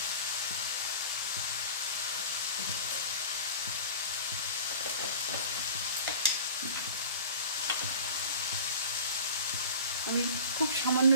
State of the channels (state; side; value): inverted; both; correlation -0.38